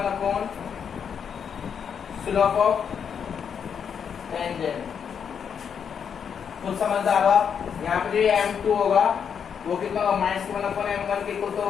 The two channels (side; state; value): right; quieter; 7.3 dB